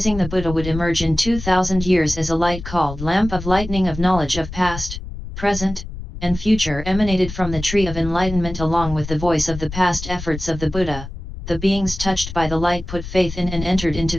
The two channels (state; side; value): noise; left; rumble, 10 dB below the sound